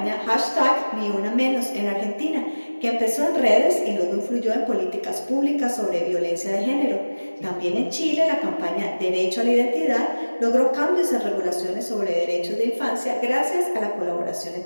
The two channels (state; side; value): inverted; both; correlation -1.00